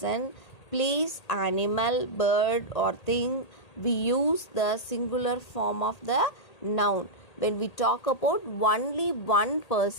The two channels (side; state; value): right; late; 1.8 ms